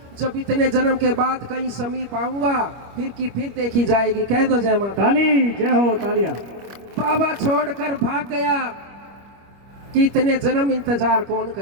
जब इतने जन्म के बाद कहीं समीप आऊंगा फिर की फिर देखी जाएगी। कह दो जय माता। ताली, जय हो, तालियां। बाबा छोड़कर भाग गया कि इतने जन्म इंतजार कौन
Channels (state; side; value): late; left; 25 ms